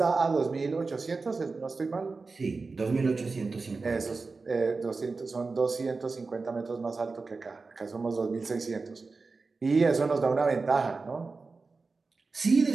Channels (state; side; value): quieter; left; 4.1 dB